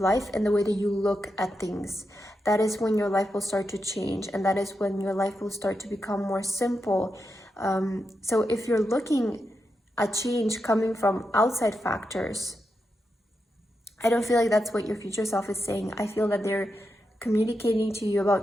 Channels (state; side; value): normal; both; correlation 0.86